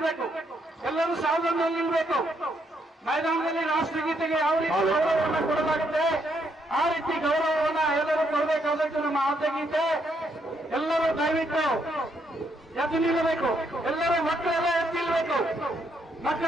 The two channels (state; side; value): normal; both; correlation 0.75